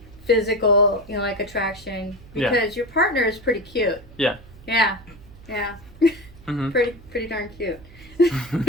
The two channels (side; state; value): right; noise; hum, 21 dB below the sound